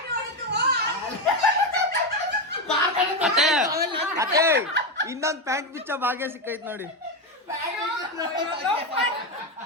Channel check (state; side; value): normal; both; correlation 0.11